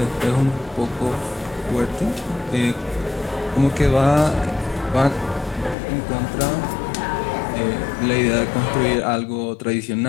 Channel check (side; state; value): right; drops out; at 5.8 s